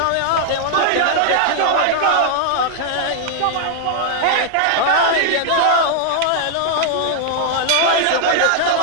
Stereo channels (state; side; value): different; both; correlation 0.00